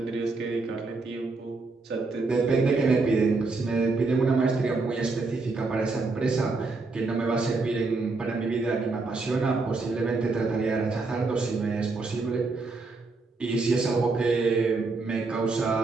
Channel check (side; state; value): left; quieter; 3.8 dB